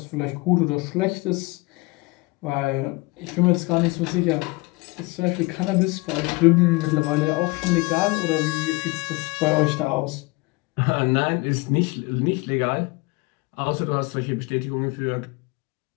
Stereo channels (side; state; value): right; quieter; 25.3 dB